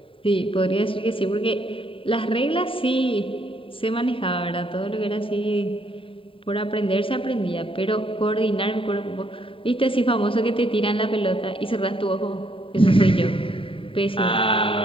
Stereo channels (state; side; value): late; right; 0.26 ms